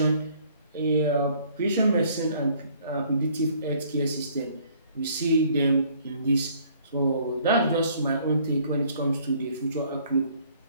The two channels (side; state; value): both; inverted; correlation -0.60